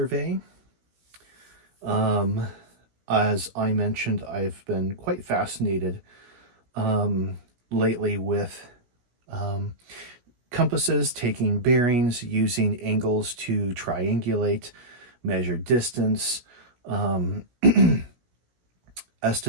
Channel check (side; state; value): left; late; 17 ms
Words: Um, as I mentioned, I've been quite fascinated um, lately with um, compasses taking bearings using angles to triangulate, measure distance, um,